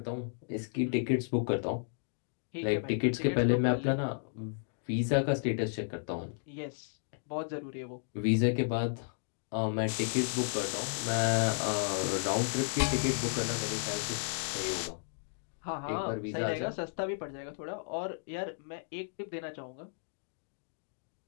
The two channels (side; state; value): right; silent; digital silence